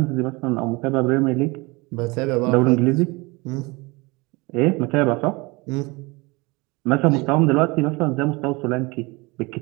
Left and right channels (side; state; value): left; quieter; 25.2 dB